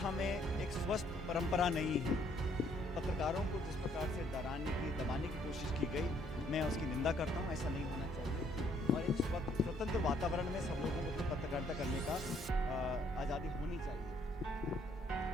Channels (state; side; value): normal; both; correlation 0.66